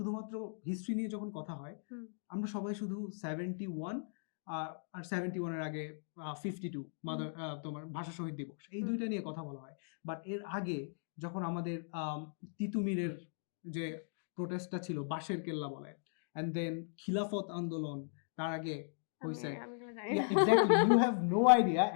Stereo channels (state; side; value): silent; right; digital silence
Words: হিস্ট্রি নিয়ে যখন কথা হয়, আমরা সবাই শুধু 71 আর 71 এর আগে 52 তোমার ভাষা শহীদ দিবস, এই দুইটা নিয়ে কথা বলা হয়। বাট এর আগে যখন আমাদের তিতুমিরের যে প্রোটেস্টটা ছিল, বাঁশের কেল্লা বলে, এন্ড দেন খিলাফত আন্দোলন, তার আগে হইছে, yeah exactly, you have no idea,